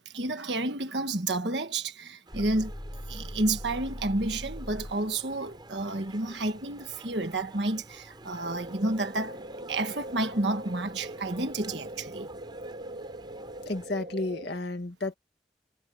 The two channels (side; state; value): both; normal; correlation 0.44